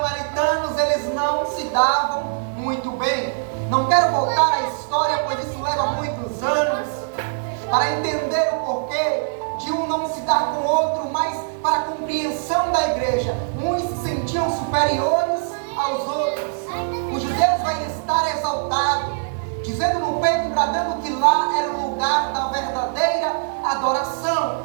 eles não se davam muito bem. Não quero voltar à história, pois isso leva muitos anos, para entender o porquê de um não se dar com o outro, mas para a compreensão da igreja. Uns se sentiam superiores aos outros. Os judeus vão estar exaltados, dizendo no peito, bradando que lá era o lugar da verdadeira adoração.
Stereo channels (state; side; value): silent; left; digital silence